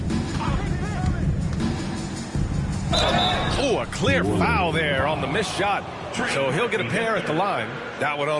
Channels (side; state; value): both; identical; correlation 1.00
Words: Oh, a clear foul there on the missed shot. So he'll get a pair at the line. That one